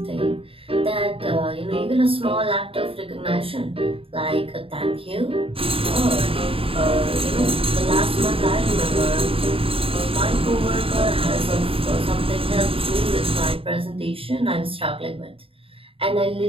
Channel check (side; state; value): left; late; 0.27 ms